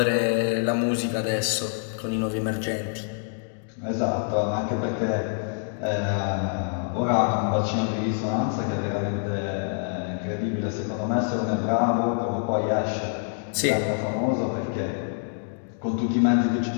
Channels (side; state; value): right; silent; digital silence